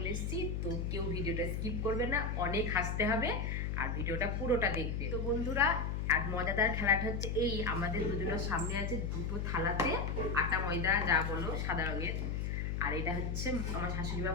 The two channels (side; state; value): left; noise; hum, 1 dB below the sound